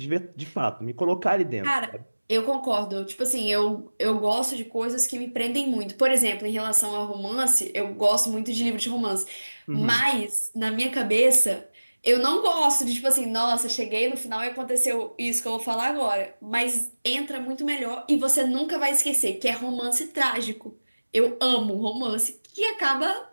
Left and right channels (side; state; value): both; inverted; correlation -1.00